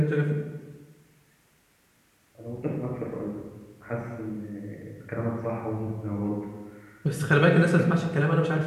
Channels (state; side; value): identical; both; correlation 1.00